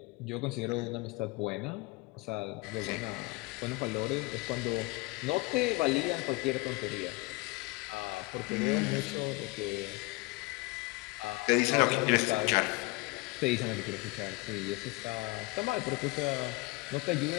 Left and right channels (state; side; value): quieter; right; 24.0 dB